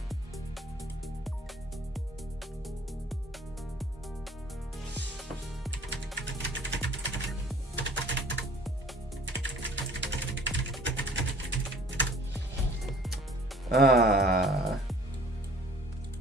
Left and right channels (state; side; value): normal; both; correlation 0.52